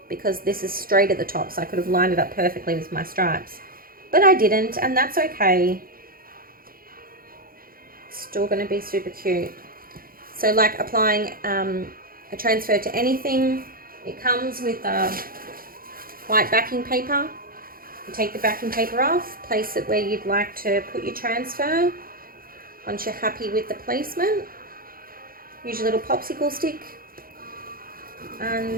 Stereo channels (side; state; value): left; late; 0.42 ms